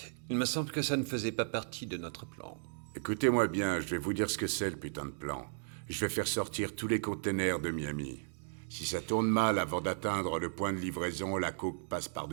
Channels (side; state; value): left; silent; digital silence